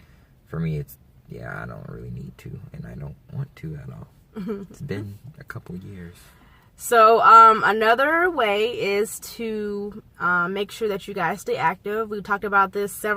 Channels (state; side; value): identical; both; correlation 1.00